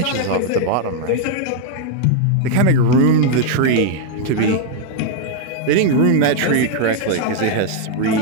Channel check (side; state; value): both; different; correlation 0.00